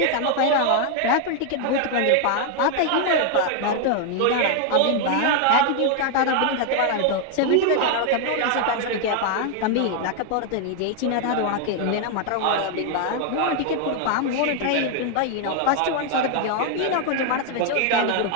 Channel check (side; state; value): both; different; correlation 0.00